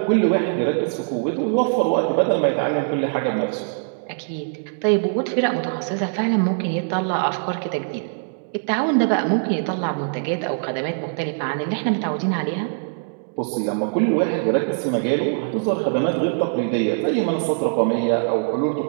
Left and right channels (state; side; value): silent; left; digital silence